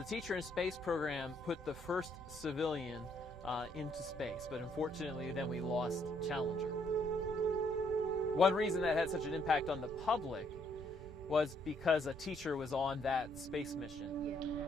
Teacher in Space program put the first civilian into space, but unfortunately then we lost Challenger. One reason that had such an impact on the public was because a teacher was on that space mission.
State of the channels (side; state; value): both; normal; correlation 0.69